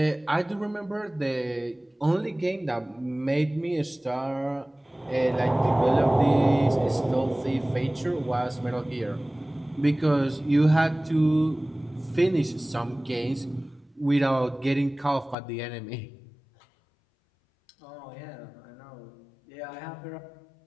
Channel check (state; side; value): drops out; right; at 15.4 s